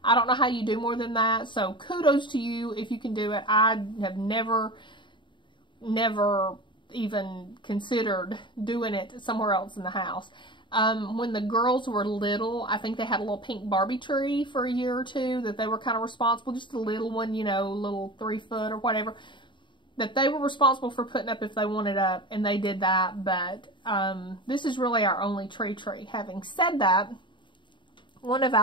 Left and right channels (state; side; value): late; right; 0.23 ms